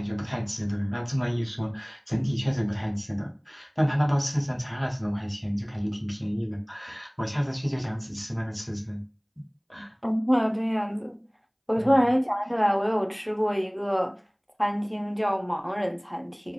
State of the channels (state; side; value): identical; both; correlation 1.00